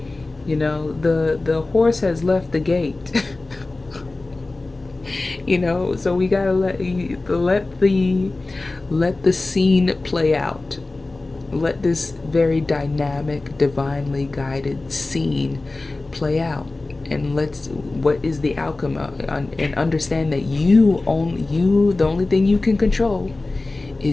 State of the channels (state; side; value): quieter; right; 3.2 dB